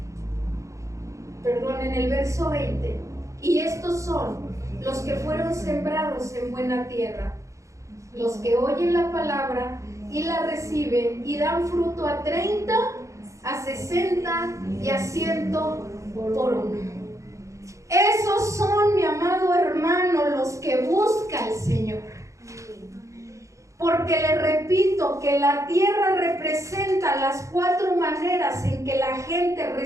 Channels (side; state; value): left; late; 0.15 ms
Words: perdón, en el verso 20, y estos son los que fueron sembrados en buena tierra, los que oyen la palabra y la reciben y dan fruto a 30, a 60 y a 100 por uno. Esos son, mi amado hermano, los que busca el Señor. Porque le repito que la tierra representa las 4 maneras en que la gente